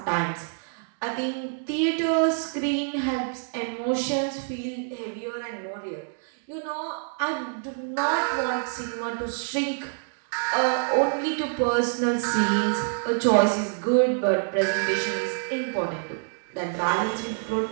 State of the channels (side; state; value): left; silent; digital silence